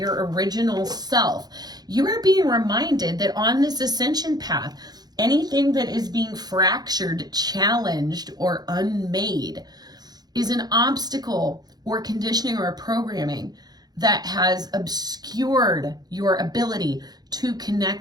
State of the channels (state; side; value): late; left; 0.19 ms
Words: original self. You are being reminded that on this ascension path, anything that is being fractured, challenged, or unmade is an obstacle or conditioning or programming that has obscured your ability to